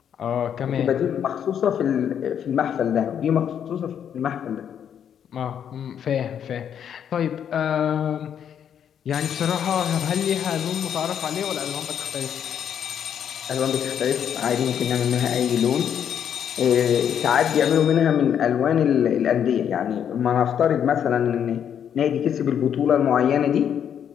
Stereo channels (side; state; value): right; quieter; 8.7 dB